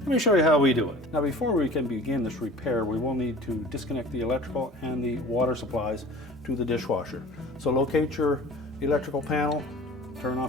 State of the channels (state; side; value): normal; both; correlation 0.42